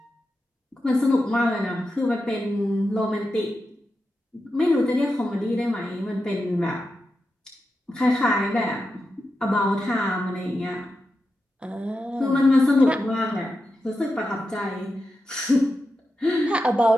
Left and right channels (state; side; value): normal; both; correlation 0.89